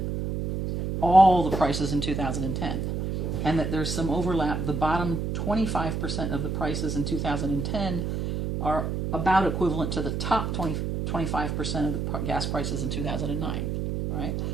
all the prices in 2010, and that there's some overlap. The bottom 25% of the prices in 2010 are about equivalent to the top 25% of the gas prices in 2009, right?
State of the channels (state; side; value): noise; right; hum, 2 dB below the sound